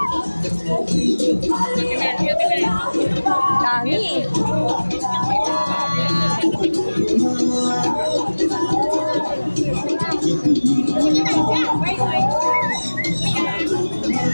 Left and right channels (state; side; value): inverted; both; correlation -1.00